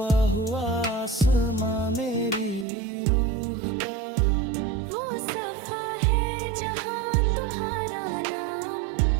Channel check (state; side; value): drops out; left; at 2.7 s